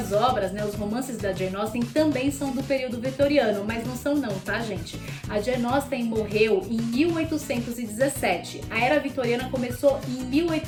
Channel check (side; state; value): both; identical; correlation 1.00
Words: obras, né, os romances da Jane Austen também são do período vitoriano, mas não são não, tá, gente? A Jane Austen morreu em 1817. A Era Vitoriana começou em